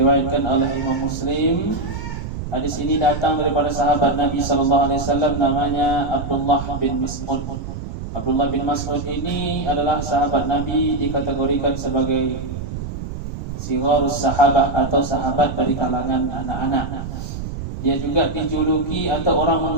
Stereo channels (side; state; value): right; noise; rumble, 7 dB below the sound